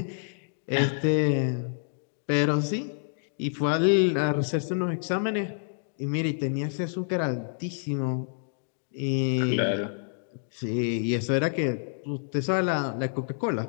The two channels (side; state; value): right; silent; digital silence